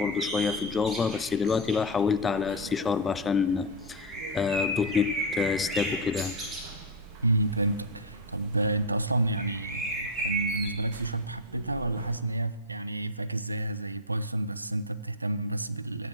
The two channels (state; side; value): normal; both; correlation 0.04